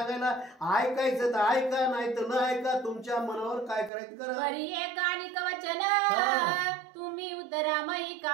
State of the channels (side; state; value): left; drops out; at 3.9 s